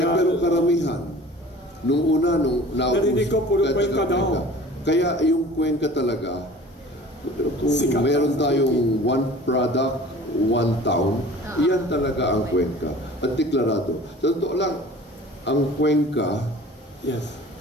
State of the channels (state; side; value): normal; both; correlation 0.45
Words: Pero karamihan, nung narinig ko, puro Cuenca daw. Kaya yung Cuenca talaga, kung Sikat. meron tayong one product, one town, iyan talaga ang Cuenca. At deklarado. Sa totoo lang, ang Cuenca, Yes.